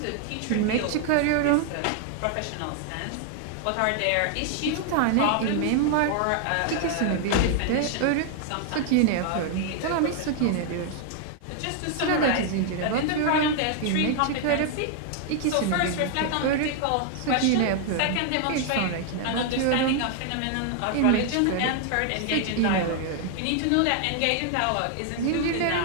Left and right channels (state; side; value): different; both; correlation 0.00